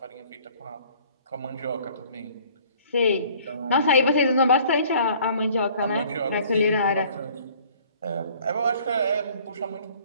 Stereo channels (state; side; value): inverted; both; correlation -0.54